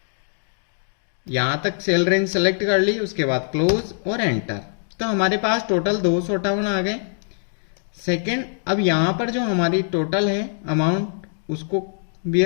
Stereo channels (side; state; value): right; silent; digital silence